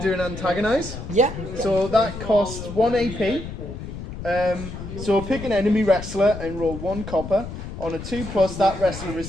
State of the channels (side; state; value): left; noise; rumble, 9 dB below the sound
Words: do an antagonise. Yeah. So that costs 1 AP. So pick an enemy wrestler and roll 1 copper. On a 2+, that wrestler